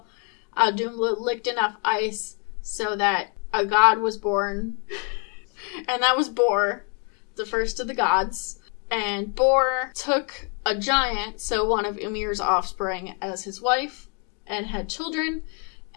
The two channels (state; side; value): quieter; right; 38.0 dB